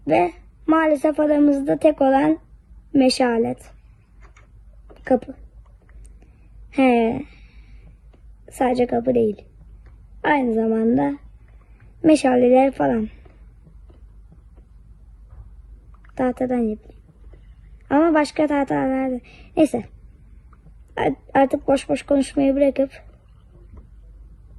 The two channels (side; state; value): both; identical; correlation 1.00